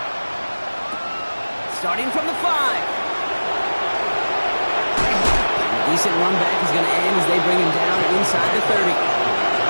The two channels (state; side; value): inverted; both; correlation -1.00